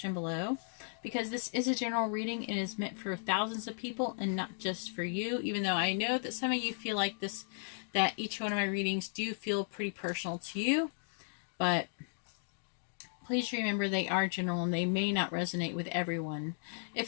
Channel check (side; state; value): right; silent; digital silence